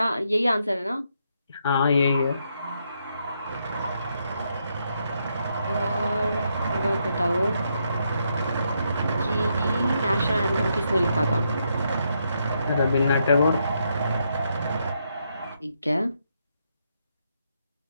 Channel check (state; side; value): inverted; both; correlation -0.78